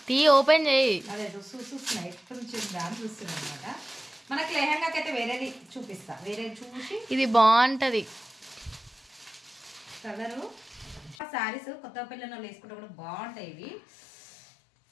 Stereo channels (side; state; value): right; drops out; at 11.2 s